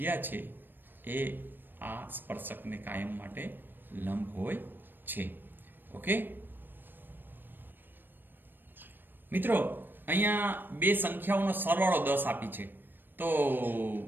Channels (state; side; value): late; left; 0.094 ms